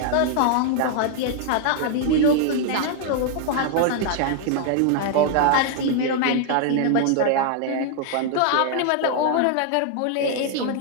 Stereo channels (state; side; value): different; both; correlation 0.00